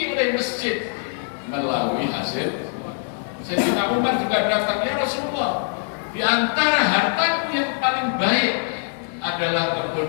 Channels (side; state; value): right; silent; 60 dB below the other